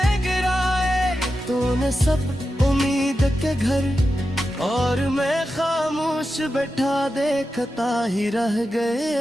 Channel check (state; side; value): normal; both; correlation 0.90